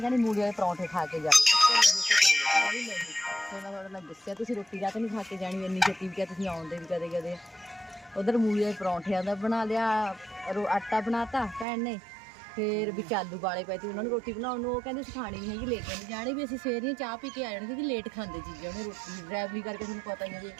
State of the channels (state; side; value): drops out; left; at 11.7 s